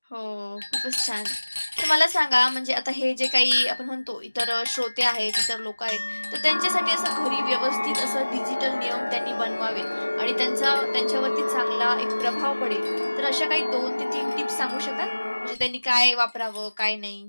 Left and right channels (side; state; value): both; inverted; correlation -1.00